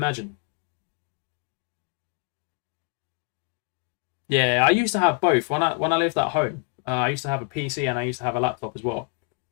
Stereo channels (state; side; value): quieter; right; 35.9 dB